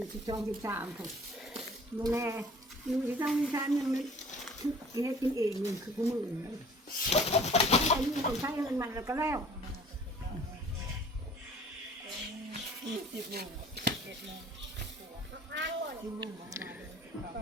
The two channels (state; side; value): normal; both; correlation 0.49